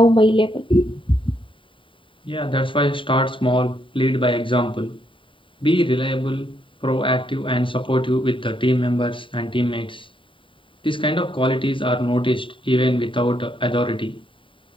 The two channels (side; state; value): right; late; 0.25 ms